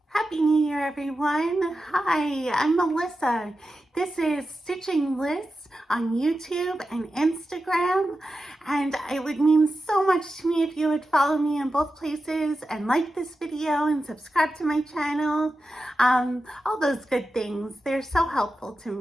Happy New Year, everyone. Hi, I'm Melissa. This is Stitching Liz on YouTube and Instagram, and it would mean so much to me if you would follow me in both places and like this video and subscribe to my channel. All those good things. They're so helpful to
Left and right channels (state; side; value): normal; both; correlation 0.91